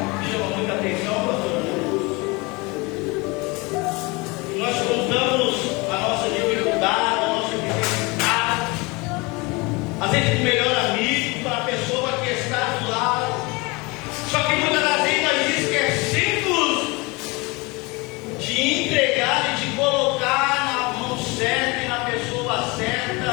chama muita atenção, pastor? Nós contamos a nossa dificuldade, a nossa necessidade, às vezes o melhor amigo, para a pessoa que está do lado. Só que muitas das vezes nós esquecemos de entregar e de colocar na mão certa e na pessoa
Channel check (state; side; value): quieter; right; 26.0 dB